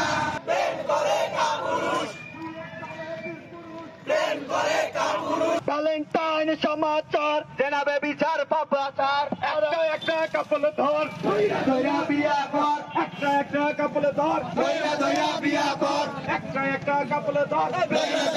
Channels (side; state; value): both; identical; correlation 1.00